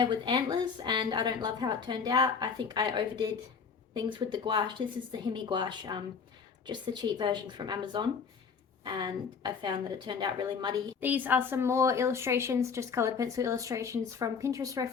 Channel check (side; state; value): right; quieter; 6.0 dB